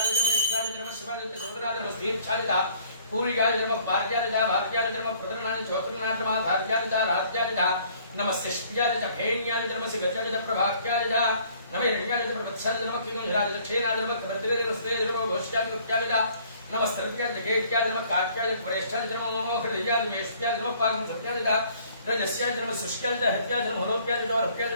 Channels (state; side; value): inverted; both; correlation -0.58